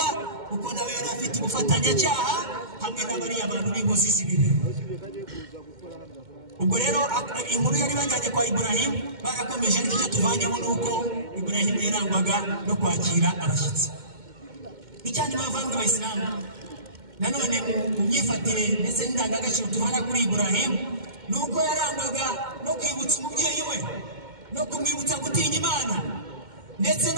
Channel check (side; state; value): left; late; 2.1 ms